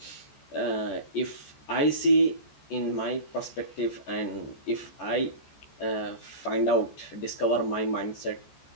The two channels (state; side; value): late; right; 14 ms